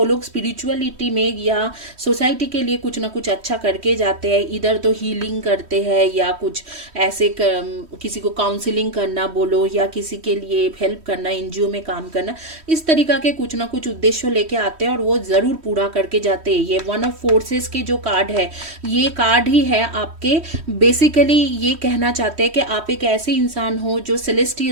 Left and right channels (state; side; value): late; left; 3.1 ms